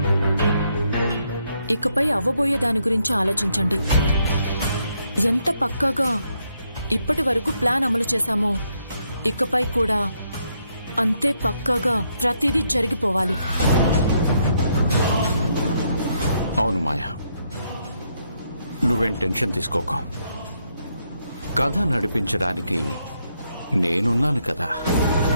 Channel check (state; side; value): inverted; both; correlation -0.76